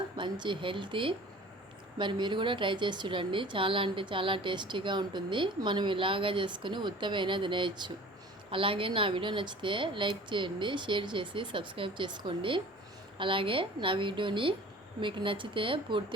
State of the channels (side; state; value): both; normal; correlation 0.44